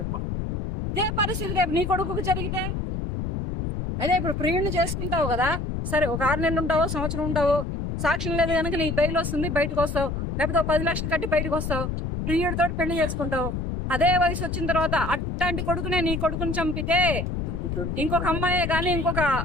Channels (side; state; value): left; noise; rumble, 3 dB below the sound